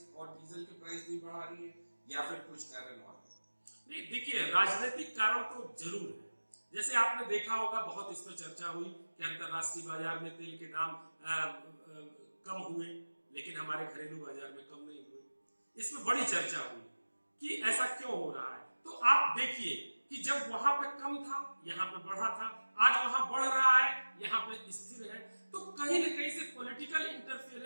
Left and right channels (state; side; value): inverted; both; correlation -1.00